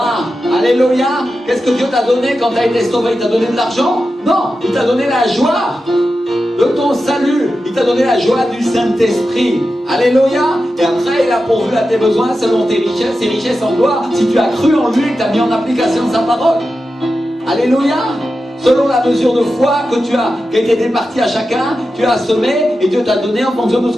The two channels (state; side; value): normal; both; correlation 0.91